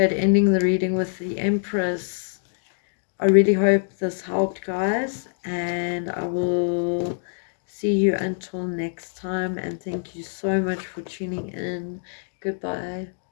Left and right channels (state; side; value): silent; right; digital silence